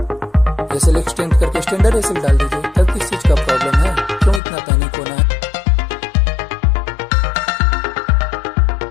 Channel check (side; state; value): right; drops out; at 4.4 s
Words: एसएल एक्सटेंड करके स्टैंडर्ड एसएल डाल दीजिए, तब किस चीज का प्रॉब्लम है, क्यों इतना पैनिक